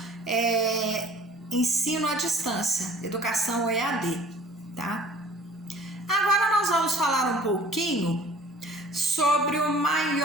ensino à distância, educação EAD, tá? Agora nós vamos falar um pouquinho sobre o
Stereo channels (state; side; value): normal; both; correlation 0.49